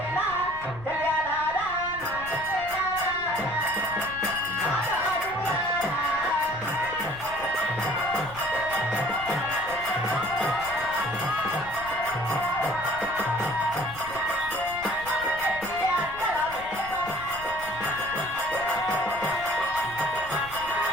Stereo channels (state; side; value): noise; left; rumble, 17 dB below the sound